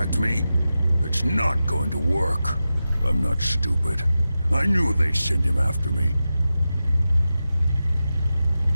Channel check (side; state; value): both; inverted; correlation -0.92